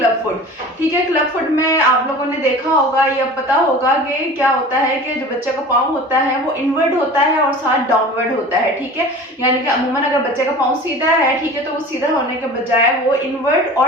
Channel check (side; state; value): both; normal; correlation 0.39